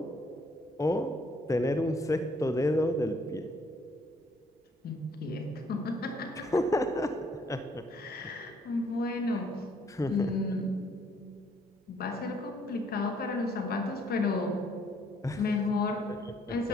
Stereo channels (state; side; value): normal; both; correlation 0.66